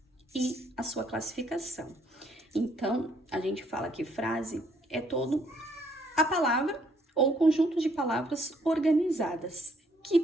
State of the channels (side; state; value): both; normal; correlation 0.67